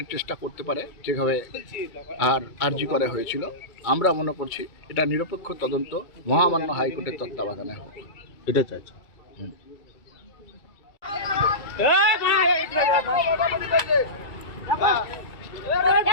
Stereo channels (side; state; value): right; late; 2.3 ms